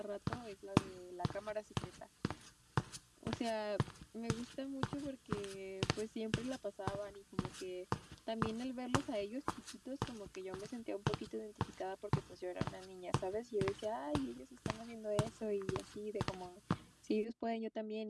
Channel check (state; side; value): identical; both; correlation 1.00